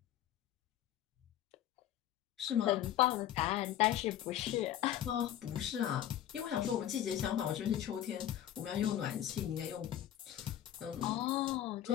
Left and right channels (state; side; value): quieter; right; 11.6 dB